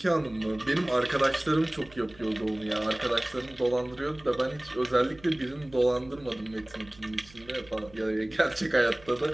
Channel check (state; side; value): noise; right; hum, 23 dB below the sound